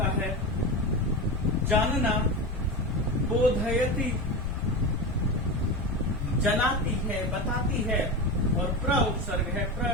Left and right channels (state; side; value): normal; both; correlation 0.21